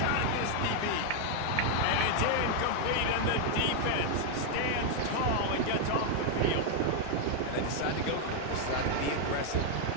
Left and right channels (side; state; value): both; different; correlation 0.00